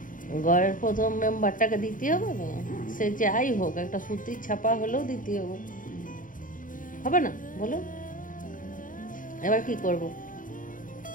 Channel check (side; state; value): right; late; 0.39 ms